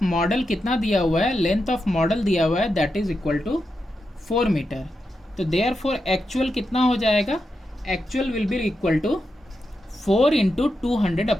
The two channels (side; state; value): both; normal; correlation 0.87